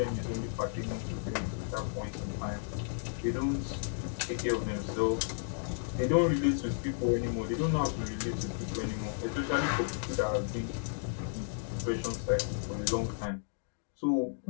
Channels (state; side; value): silent; right; digital silence